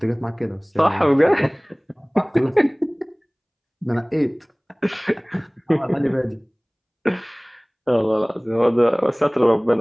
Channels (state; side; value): identical; both; correlation 1.00